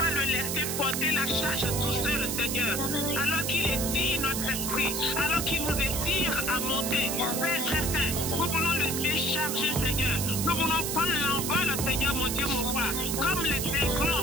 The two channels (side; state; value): right; noise; hiss, 2 dB below the sound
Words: le laisser porter la charge tout seul, Seigneur. Alors qu'il étire notre esprit, alors qu'il nous étire à monter. Père très saint, nous voulons le décharger, Seigneur. Nous voulons prendre l'envol, Seigneur, mon Dieu, mon roi. Comme les